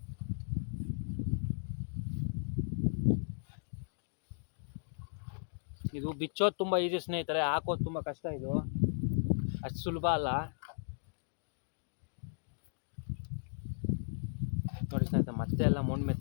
ಇದು ಬಿಚ್ಚೋದು ತುಂಬ ಈಸಿ ಸ್ನೇಹಿತರೆ, ಹಾಕೋದು ತುಂಬ ಕಷ್ಟ. ಇದು ಅಷ್ಟು ಸುಲಭ ಅಲ್ಲ ನೋಡಿ ಸ್ನೇಹಿತರೆ. ಮತ್ತೆ ಎಲ್ಲ ಮಣ್ಣು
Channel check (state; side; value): silent; right; digital silence